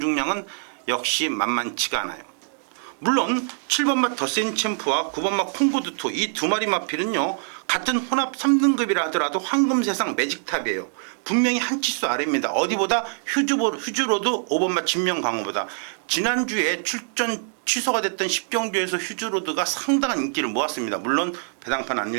역시 만만치가 않아요. 물론 7번마 더센 챔프와 9번마 콩고드2 이 두 마리 마필은요 같은 혼합 3등급이라 하더라도 황금세상 매직탑이에요. 분명히 한 치수 아래입니다. 어디보다 휴즈로드 5번마 진명광호보다. 지난주에 출전 취소가 됐던 10경주에서 휴즈로드가 상당한 인기를 모았습니다. 물론 배당판 안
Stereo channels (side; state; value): left; silent; digital silence